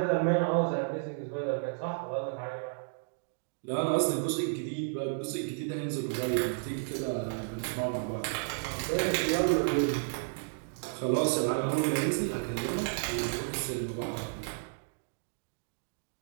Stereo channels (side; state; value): left; silent; digital silence